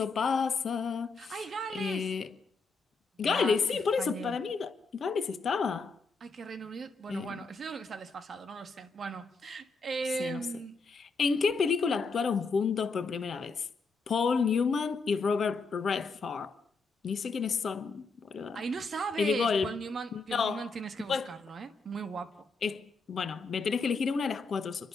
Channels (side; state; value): right; quieter; 4.1 dB